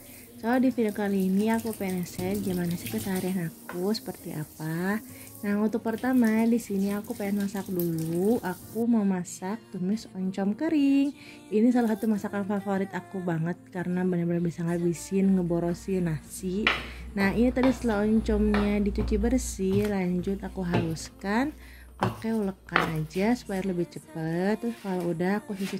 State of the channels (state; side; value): identical; both; correlation 1.00